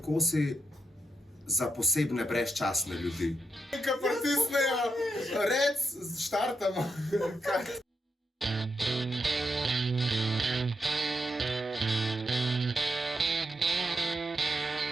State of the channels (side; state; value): both; normal; correlation 0.83